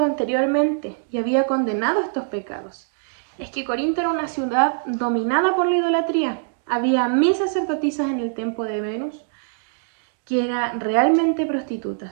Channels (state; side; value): silent; left; digital silence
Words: anteriormente y había condenado estos pecados. Es que Corinto era una ciudad dominada por la idolatría. Había 1000 sacerdotisas en el templo de Venus que eran realmente